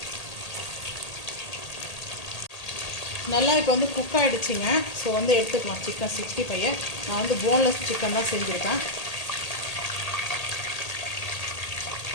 நல்லா இப்போ வந்து குக் ஆகிடுச்சிங்க. ஸோ வந்து எடுத்துக்கலாம் சிக்கன் 65. நான் வந்து போன்லெஸ் சிக்கன் தான் செஞ்சுருக்கேன்.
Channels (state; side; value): late; right; 1.8 ms